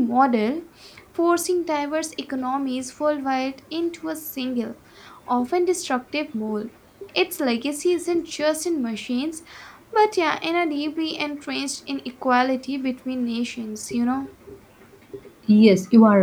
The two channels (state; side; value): identical; both; correlation 1.00